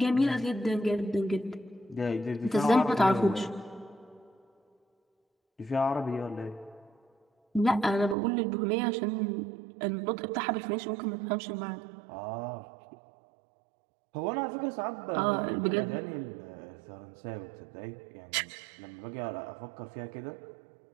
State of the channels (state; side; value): drops out; left; at 8.2 s